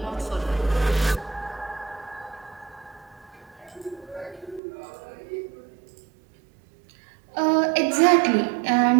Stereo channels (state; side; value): drops out; left; at 4.6 s